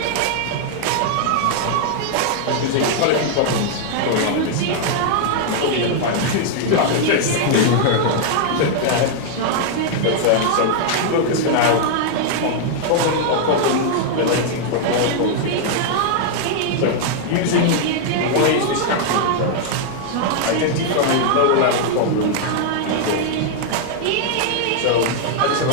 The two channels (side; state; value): both; different; correlation -0.01